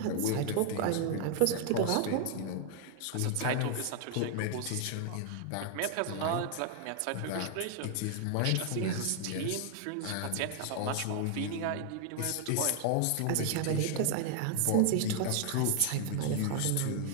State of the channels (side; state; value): both; different; correlation 0.00